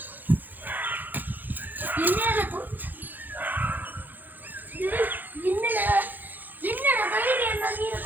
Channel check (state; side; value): late; left; 0.086 ms